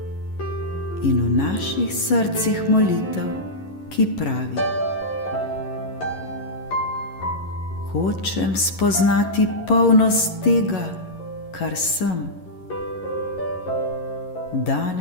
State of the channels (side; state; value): right; late; 11 ms